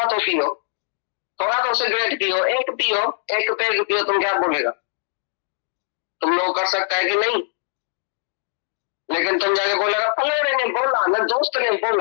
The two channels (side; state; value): right; silent; digital silence